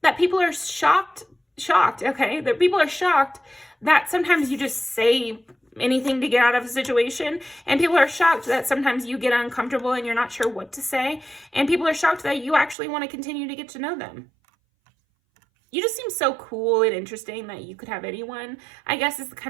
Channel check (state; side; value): drops out; left; at 12.8 s